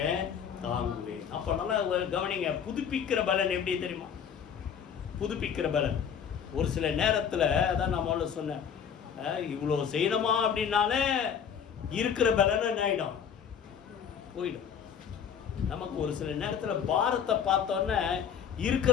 தாங்குவேன். அப்போ நல்லா கவனிங்க. புதுப்பிக்கிற பலன் எப்படி தெரியுமா? புதுப்பிக்கிற பலன் ஒரு சில நேரத்தில், அதான் நான் முதல்ல சொன்னேன், இவ்வளோ செய்யணுமா அப்படின்னாலே இருக்கிற பலன் என்ன ஆகிடும், போயிடும். நமக்கு ஒரு சில நேரத்தில் பாரத்தை பார்த்தோன்னே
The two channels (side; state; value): right; quieter; 7.7 dB